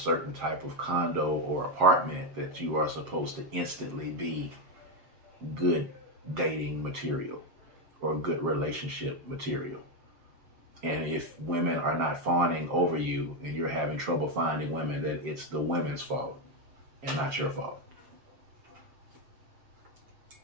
type of condo or apartment, that you are supposed to instantly be good dating material or good relationship material. And if women are not fawning over you and you're having trouble finding women, that it's the women's fault and not your fault.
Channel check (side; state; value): left; late; 7.3 ms